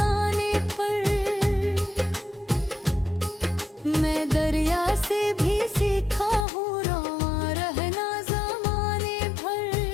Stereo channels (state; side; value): drops out; right; at 6.5 s